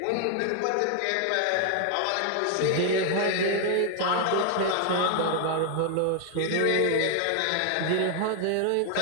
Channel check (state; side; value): different; both; correlation 0.00